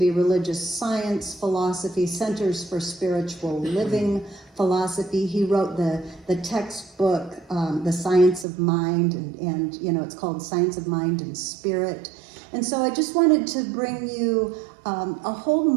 Religious Science Philosophy, Centers for Spiritual Living Philosophy. He wrote the textbook, The Science of Mind, and it's called Science of Mind and Spirit. And so I just wanted to bring you a whole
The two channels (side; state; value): left; drops out; at 8.5 s